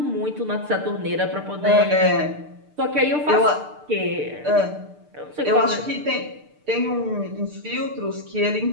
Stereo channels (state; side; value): late; left; 6.7 ms